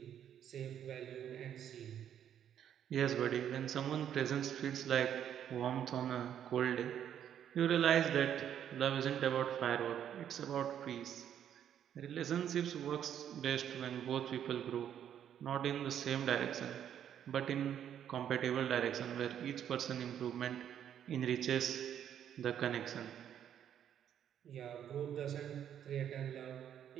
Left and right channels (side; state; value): left; quieter; 9.7 dB